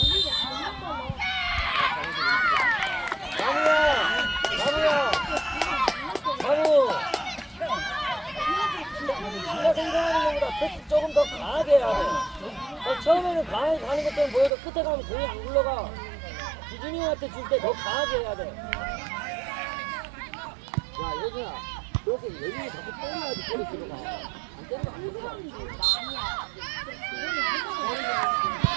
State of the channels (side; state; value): left; drops out; at 14.5 s